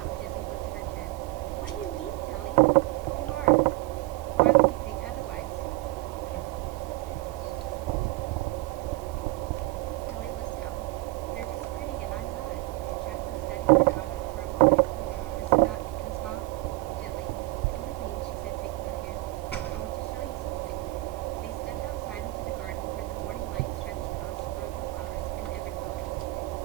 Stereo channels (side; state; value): left; quieter; 20.7 dB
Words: gently lifted her chin. "What do you mean, Kelly? You are. Why would you think otherwise?" Kelly looked down. "They're just pretty and I'm not." Jacqueline studied her daughter for a moment, then smiled gently. "Come with me," she said, taking her hand. "I want to show you something." They stepped outside into the garden where the morning light stretched across rows of flowers in every color.